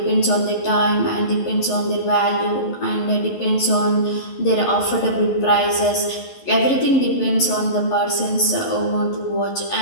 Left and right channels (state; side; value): late; right; 11 ms